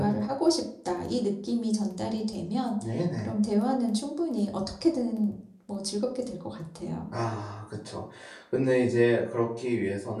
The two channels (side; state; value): both; identical; correlation 1.00